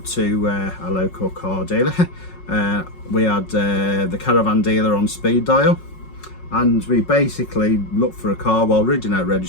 to a local car dealer. We had the caravan dealer on speed dial, and we basically looked for a car while reading out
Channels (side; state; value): right; late; 5.4 ms